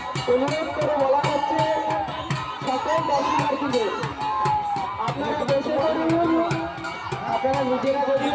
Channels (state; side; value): identical; both; correlation 1.00